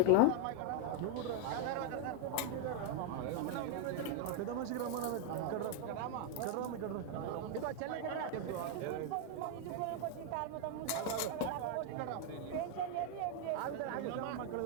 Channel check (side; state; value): both; different; correlation 0.00